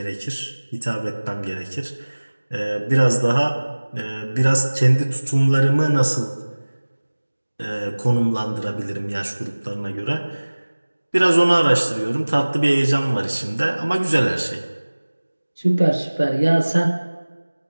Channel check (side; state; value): both; inverted; correlation -1.00